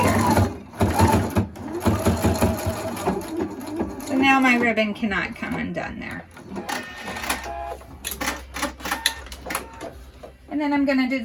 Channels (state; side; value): identical; both; correlation 1.00